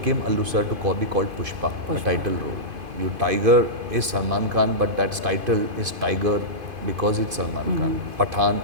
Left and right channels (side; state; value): left; late; 2.5 ms